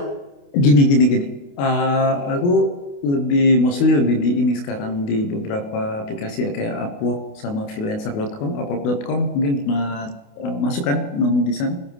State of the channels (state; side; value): late; right; 28 ms